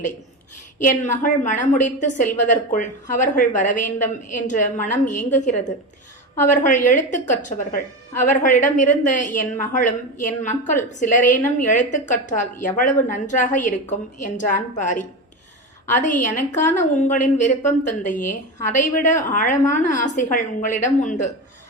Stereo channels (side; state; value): both; normal; correlation 0.21